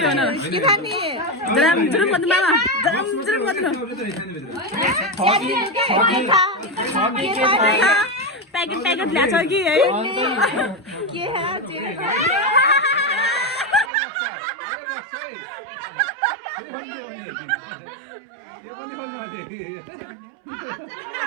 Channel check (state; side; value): drops out; left; at 13.9 s